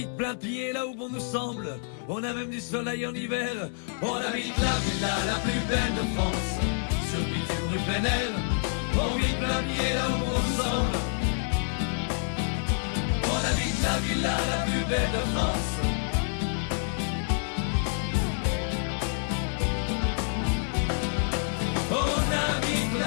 plein pied là où bon nous semble. On a même du soleil en hiver. On habite la villa la plus belle de France, sur le bitume rue plein air. On vit plein pied là où bon nous semble. On habite la villa la plus belle de France. On habite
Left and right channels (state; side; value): silent; right; 56 dB below the other